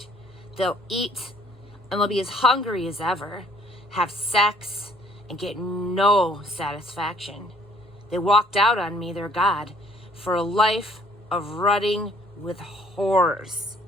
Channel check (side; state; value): both; normal; correlation 0.59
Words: They'll eat and they'll be as hungry as ever, have sex and get no satisfaction. They walked out on me, their God, for a life of rutting with whores.